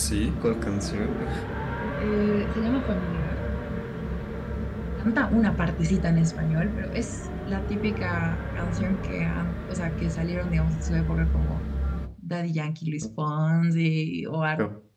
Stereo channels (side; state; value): both; identical; correlation 1.00